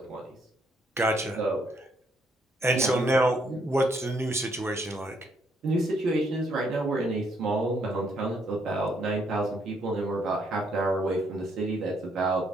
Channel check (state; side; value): normal; both; correlation 0.71